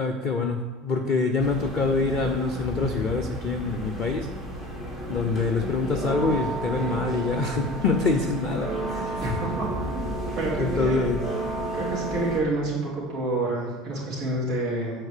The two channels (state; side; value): normal; both; correlation 0.41